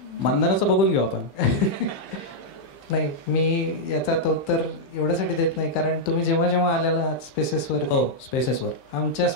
मानधनाचं बघून घेऊ आपण. नाही, मी याचा उत्तर एवढ्यासाठी देत नाही कारण तुम्ही जेव्हा जेव्हा आलेला आहात स्पेसेसवर, स्पेसेसवर आमच्या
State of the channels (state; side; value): late; right; 15 ms